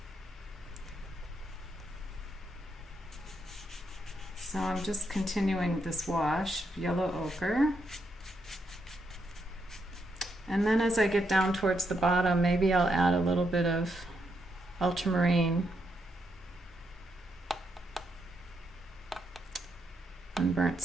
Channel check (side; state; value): both; normal; correlation 0.80